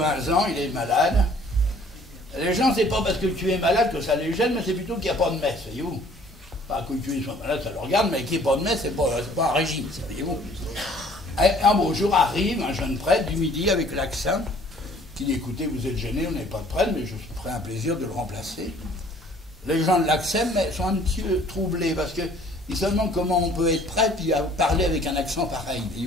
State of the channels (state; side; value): normal; both; correlation 0.56